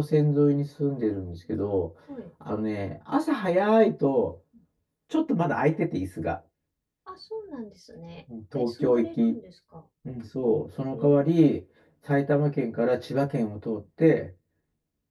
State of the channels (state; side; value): identical; both; correlation 1.00